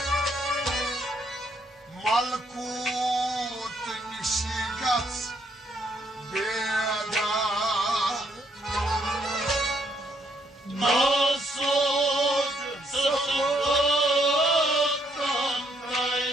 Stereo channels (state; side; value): normal; both; correlation 0.72